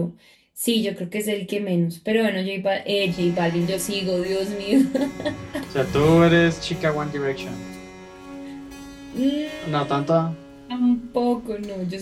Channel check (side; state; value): both; identical; correlation 1.00